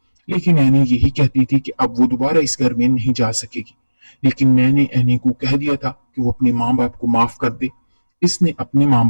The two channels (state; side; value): inverted; both; correlation -1.00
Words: लेकिन एनी यही कहती थी कि अब वो दोबारा इस घर में नहीं जा सकेगी। लेकिन मैंने एनी को कह दिया था कि वो अपने माँ बाप को माफ कर दे। इसने अपने माँ